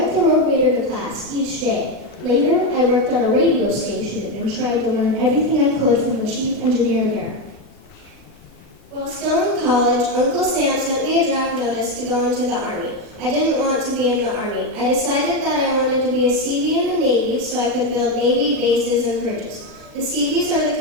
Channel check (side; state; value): right; late; 3.1 ms